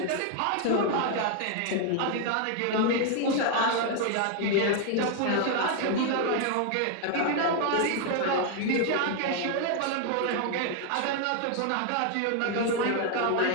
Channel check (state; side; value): different; both; correlation 0.00